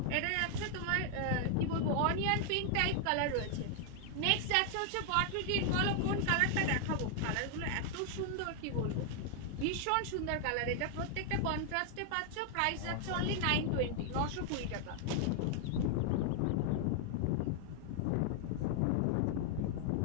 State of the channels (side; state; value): both; different; correlation 0.00